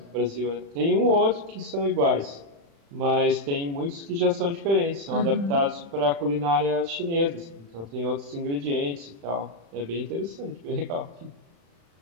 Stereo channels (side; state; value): left; late; 35 ms